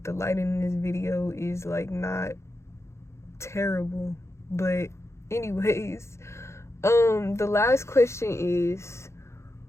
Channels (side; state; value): right; late; 0.13 ms